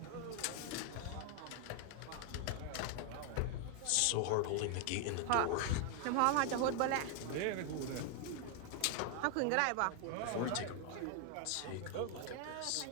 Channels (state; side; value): different; both; correlation 0.00